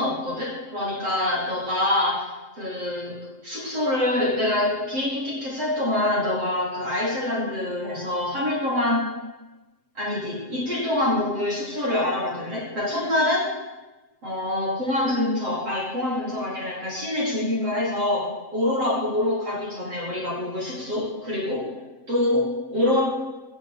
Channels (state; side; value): late; left; 7.7 ms